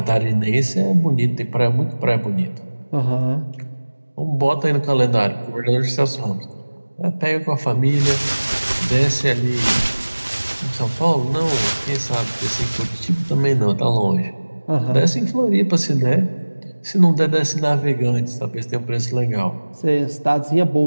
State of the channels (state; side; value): inverted; both; correlation -1.00